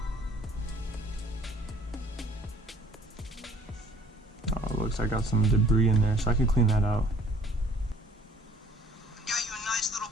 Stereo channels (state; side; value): normal; both; correlation 0.56